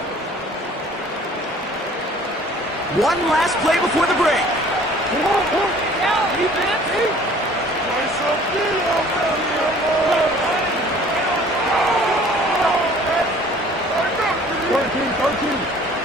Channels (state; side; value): normal; both; correlation 0.52